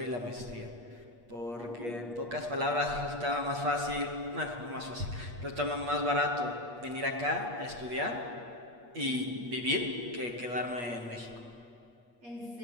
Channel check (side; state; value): left; late; 8.4 ms